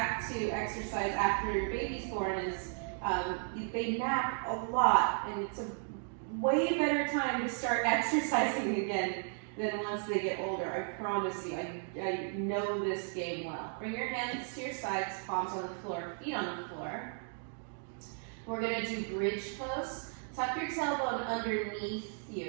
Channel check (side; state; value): left; silent; 54 dB below the other